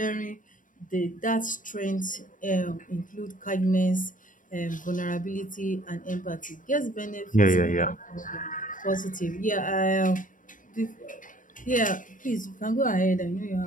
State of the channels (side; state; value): right; late; 0.38 ms